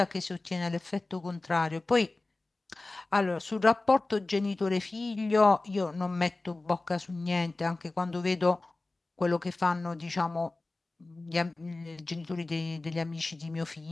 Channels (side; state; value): right; quieter; 3.1 dB